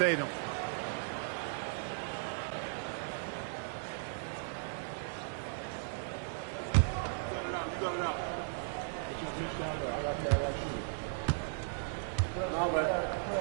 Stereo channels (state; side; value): silent; left; digital silence